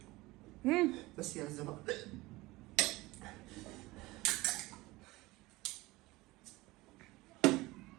بس يا زلمه.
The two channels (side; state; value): left; quieter; 20.5 dB